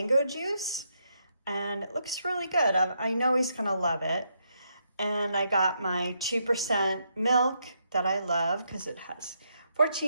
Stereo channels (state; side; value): inverted; both; correlation -0.78